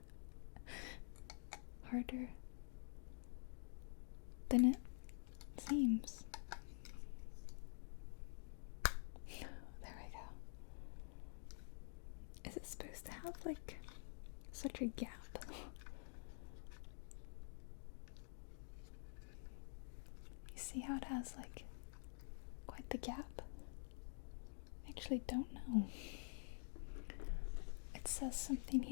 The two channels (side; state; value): right; silent; digital silence